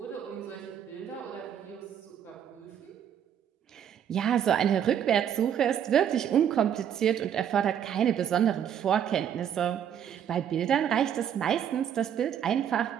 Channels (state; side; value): quieter; left; 9.2 dB